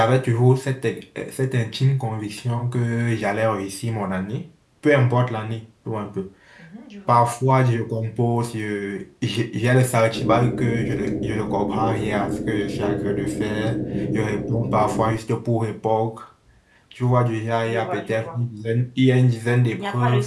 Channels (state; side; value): identical; both; correlation 1.00